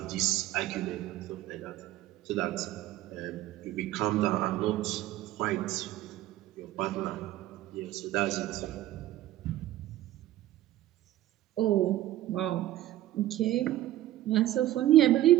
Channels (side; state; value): left; quieter; 14.5 dB